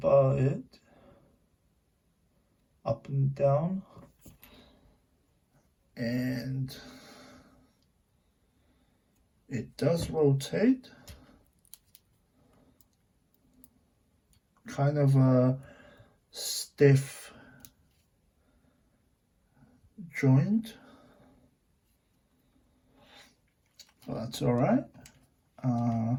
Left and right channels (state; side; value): identical; both; correlation 1.00